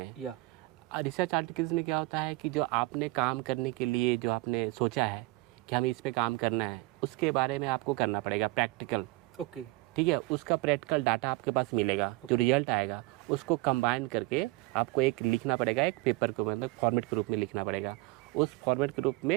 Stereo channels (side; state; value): left; quieter; 21.9 dB